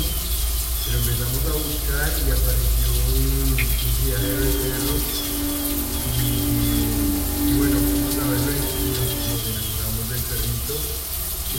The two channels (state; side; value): identical; both; correlation 1.00